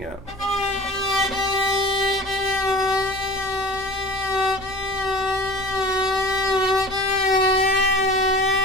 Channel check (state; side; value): normal; both; correlation 0.39